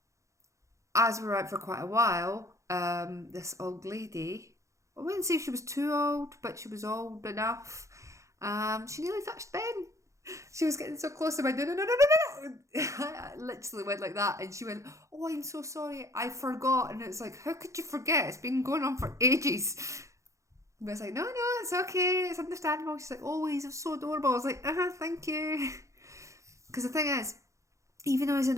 As we were out for quite a while, this old lady, I wouldn't say she was too old, but she was old enough. She nearly touched Ben. She was getting so close to me. No. I literally went like that, and she went, "Oh, I'm so sorry, I forgot." And it's like, how could you forget? It's been going on for ages. But I was like, no, it's okay, it's understandable. She's like, oh, he's so adorable. I was like, thank you. Because the thing is, even though he's in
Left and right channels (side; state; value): left; late; 0.15 ms